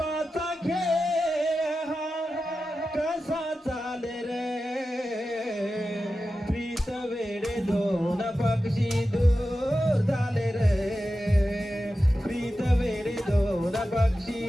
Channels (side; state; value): both; normal; correlation 0.92